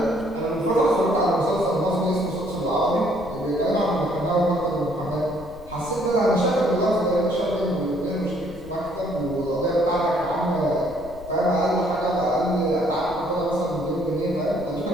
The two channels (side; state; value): left; noise; rumble, 18 dB below the sound